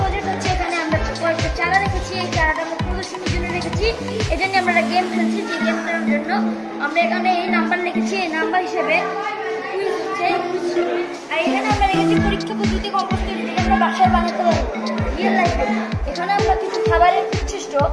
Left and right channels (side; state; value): both; identical; correlation 1.00